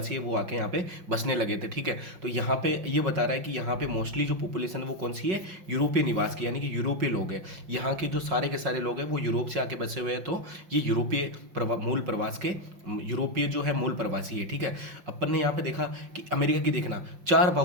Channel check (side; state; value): left; late; 5.7 ms